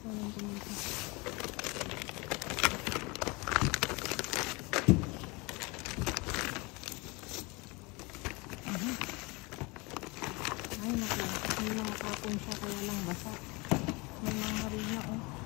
ng tumita. Ay naku, may mga kapon siya kaya lang basa. May mga harina oh.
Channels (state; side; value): quieter; right; 26.4 dB